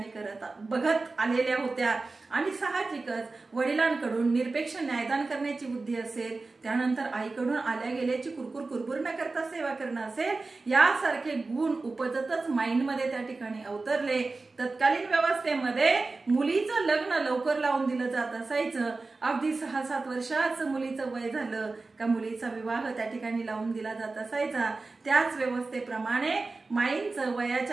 बघत आलेल्या होत्या आणि साहजिकच वडिलांकडून निरपेक्ष न्यायदान करण्याची बुद्धी असेल, त्यानंतर आईकडून आल्या गेल्याची कुरकुर न करता सेवा करणं असेल, यासारखे गुण उपजतच माइंडमध्ये त्या ठिकाणी अवतरले। तत्कालीन व्यवस्थेमध्ये मुलीचं लग्न लवकर लावून दिलं जात असायचं। अगदी 6-7 वर्षाचं मुलीचं वय झालं का मुलीचा विवाह त्या ठिकाणी लावून दिला जात असायचा। त्याच व्यवस्थेप्रमाणे माईंचं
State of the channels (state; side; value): quieter; left; 3.6 dB